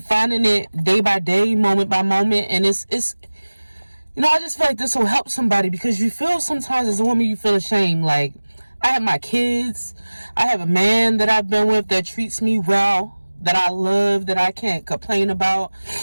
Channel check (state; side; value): inverted; both; correlation -1.00